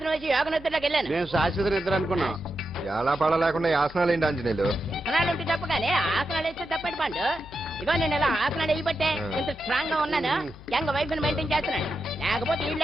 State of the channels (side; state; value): left; noise; hum, 18 dB below the sound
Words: వేసి యోగ నిద్రలోకి వెళ్ళాను. నేను శాశ్వత నిద్ర అనుకున్నా. ఎలా పాడ లేకుండా ఆసనాలు ఏంటి ఆంజనేయులు? ఆసనాలు ఉంటే తప్ప కానీ ఆసనాలు వేస్తే తప్పటి పండు. ఇగో నేను ఇలా ఆసనాలు వేయబట్టే ఇంత స్ట్రాంగ్ గా ఉన్నాను. యంగ్ వైఫ్ ని మెయింటైన్ చేస్తున్నాను. లేకపోతే